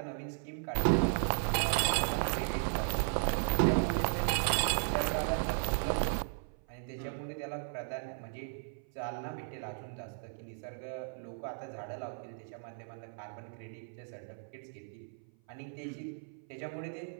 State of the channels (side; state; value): left; silent; 54 dB below the other